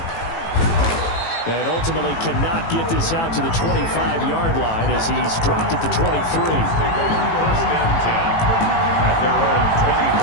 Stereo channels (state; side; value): late; right; 18 ms